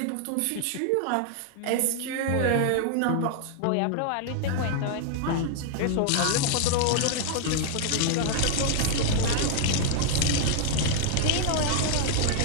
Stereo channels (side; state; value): both; different; correlation 0.00